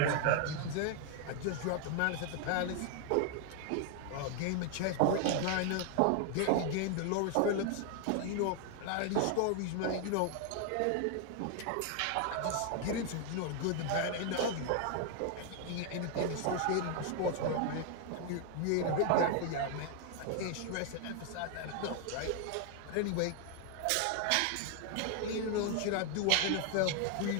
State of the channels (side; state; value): both; different; correlation 0.00